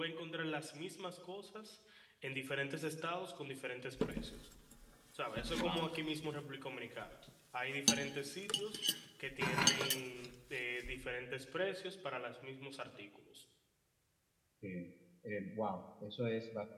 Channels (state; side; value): identical; both; correlation 1.00